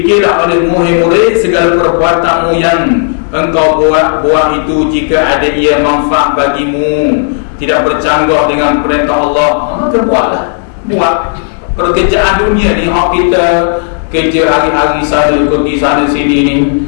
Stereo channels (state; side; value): silent; right; digital silence